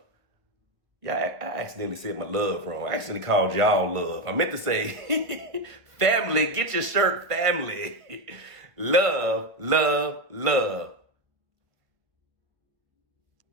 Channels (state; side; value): late; left; 1.7 ms